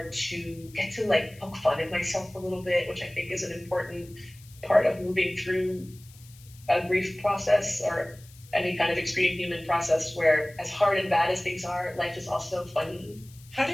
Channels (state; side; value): noise; left; hiss, 24 dB below the sound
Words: to get to like poke fun at myself a little bit, which I think is an important part of moving through a grief process or any kind of extreme human process, where as hard and bad as things are, life is also funny. How